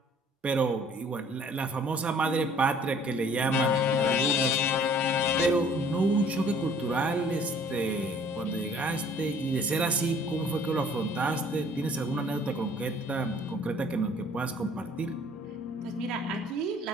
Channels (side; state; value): both; normal; correlation 0.55